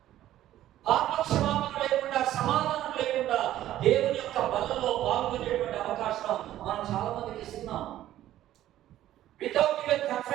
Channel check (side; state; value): left; quieter; 13.2 dB